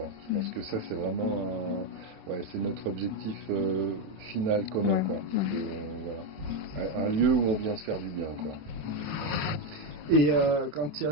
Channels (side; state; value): left; late; 27 ms